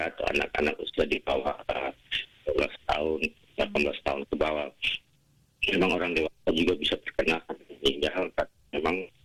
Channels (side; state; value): both; identical; correlation 1.00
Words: atau anak-anak usia di bawah 12 tahun, 18 tahun ke bawah. Memang orang dewasa juga bisa terkena meninggal, tapi memang